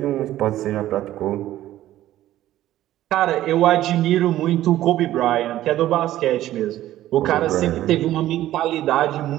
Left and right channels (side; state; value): left; quieter; 13.9 dB